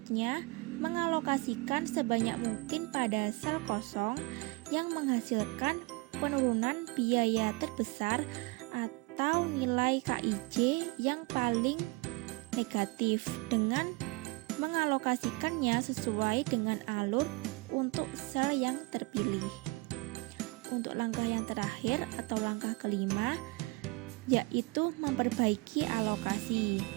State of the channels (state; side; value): quieter; left; 25.9 dB